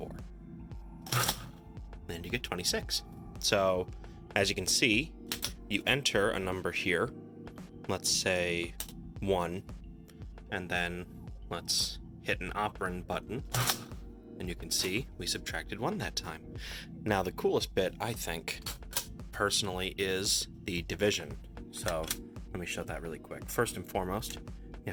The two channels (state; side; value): identical; both; correlation 1.00